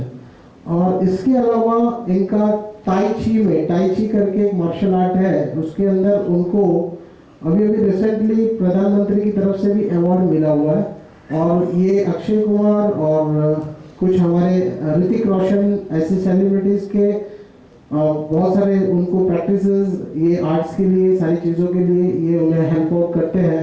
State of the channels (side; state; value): both; identical; correlation 1.00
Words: और इसके अलावा इनका टाई ची करके एक मार्शल आर्ट है, उसके अंदर उनको अभी रिसेंटली प्रधानमंत्री की तरफ से भी अवार्ड मिला हुआ है। और ये अक्षय कुमार और कुछ हमारे ऋतिक रोशन ऐसे सेलिब्रिटीज के बहुत सारे उनको प्रैक्टिसेस ये आर्ट्स के लिए, सारी चीज़ों के लिए ये उन्हें हेल्प आउट करते